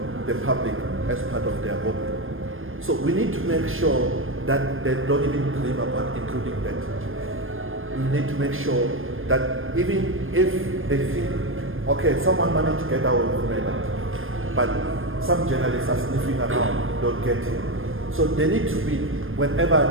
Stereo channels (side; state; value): left; late; 0.59 ms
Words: the public as part of their hobby. So we need to make sure that they don't even dream about including that. We need to make sure that even if they think, okay, someone managed to get away with murder, but some journalists are sniffing around, don't get it. So they need to be,